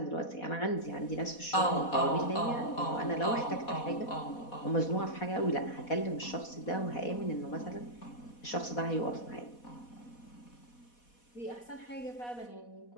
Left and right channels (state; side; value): late; right; 4.1 ms